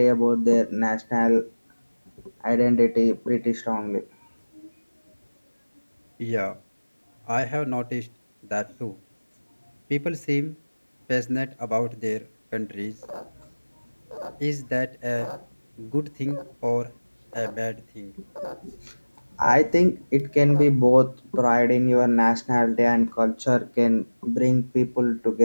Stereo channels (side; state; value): both; inverted; correlation -1.00